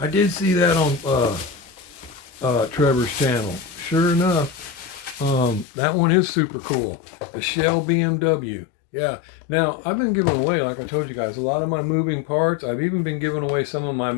did see that on Trevor's channel. Sure enough, that one is super cool. The Shell BMW. Yeah. Now, I've been giving away, like I told you guys, a lot of my moving parts. I've even been giving away some of my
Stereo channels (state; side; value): drops out; right; at 5.7 s